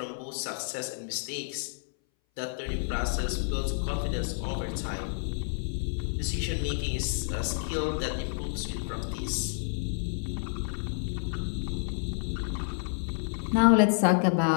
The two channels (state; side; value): silent; right; 58 dB below the other